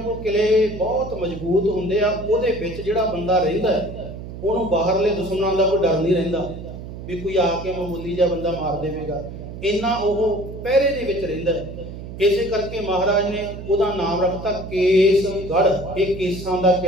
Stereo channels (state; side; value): noise; right; hum, 11 dB below the sound